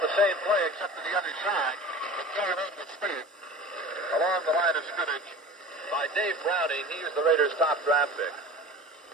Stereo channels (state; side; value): normal; both; correlation 0.37